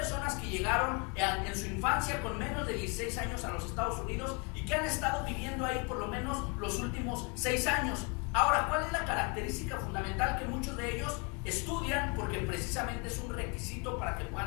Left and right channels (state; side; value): quieter; right; 31.9 dB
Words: que llegaron en su infancia con menos de 16 años a los Estados Unidos y que han estado viviendo ahí por lo menos los últimos 6 años. Ahora, ¿cuál es la característica fundamental? Que muchos de ellos estudian porque precisamente es un requisito para que